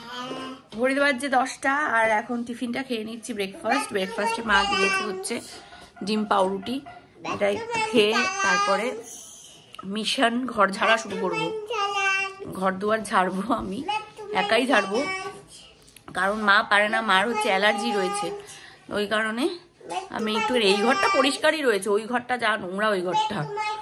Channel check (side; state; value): both; identical; correlation 1.00